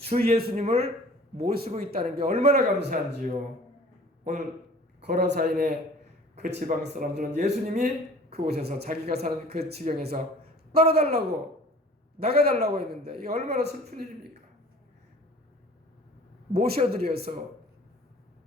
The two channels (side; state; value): both; normal; correlation 0.48